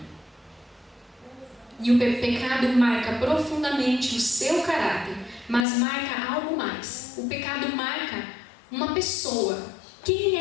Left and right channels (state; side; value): drops out; right; at 5.7 s